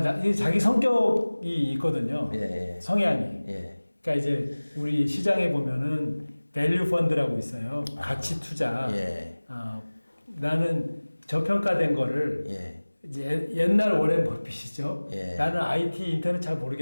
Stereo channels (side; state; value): both; inverted; correlation -1.00